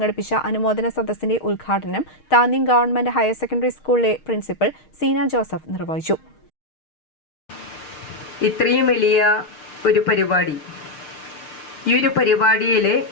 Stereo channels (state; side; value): late; right; 6.4 ms